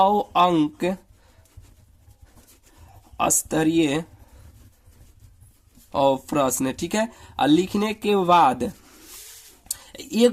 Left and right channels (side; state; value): both; identical; correlation 1.00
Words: अंक स्तरीय और प्रश्न, ठीक है। और लिखने के बाद